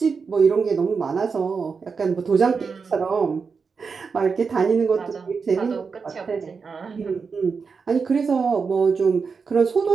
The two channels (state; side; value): quieter; left; 5.3 dB